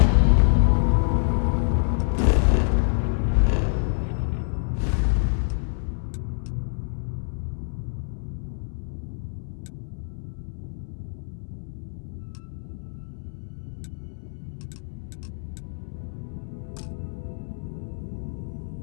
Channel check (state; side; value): silent; right; 61 dB below the other